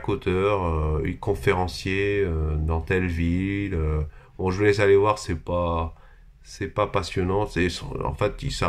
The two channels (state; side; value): identical; both; correlation 1.00